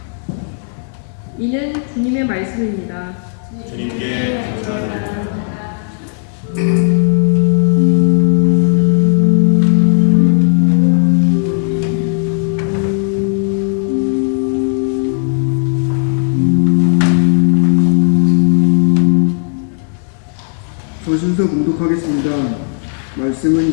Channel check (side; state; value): right; silent; digital silence